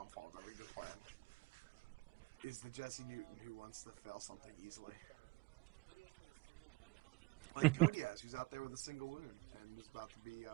of every good plan. Is the Jesse Newton who wants to fail something easily. Like Kodias, who's out there with a single wound and is about to be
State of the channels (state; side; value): quieter; left; 24.1 dB